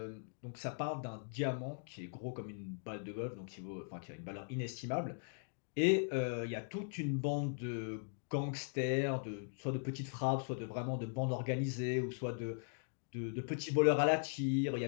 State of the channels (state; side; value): silent; right; digital silence